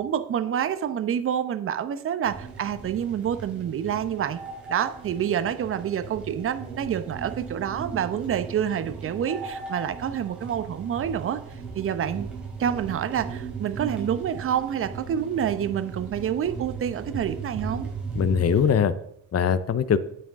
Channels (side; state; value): left; quieter; 3.6 dB